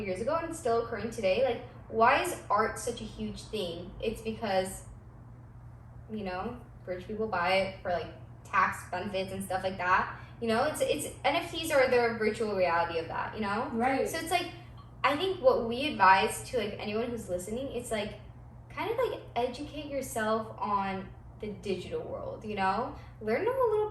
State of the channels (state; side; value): identical; both; correlation 1.00